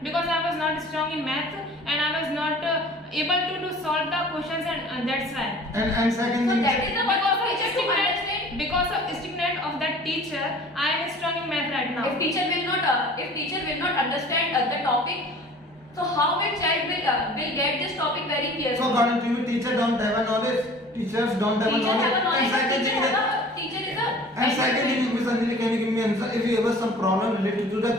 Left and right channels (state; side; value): normal; both; correlation 0.46